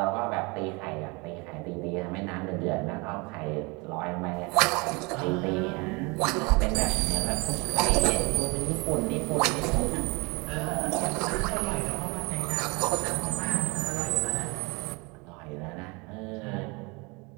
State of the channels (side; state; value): left; quieter; 28.0 dB